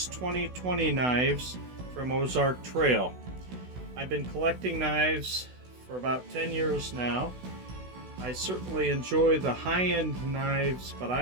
2020 knives from Ozark Trail. I've been collecting knives for about 10 years now. I certainly enjoy the high-end knives, but I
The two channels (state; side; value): late; left; 16 ms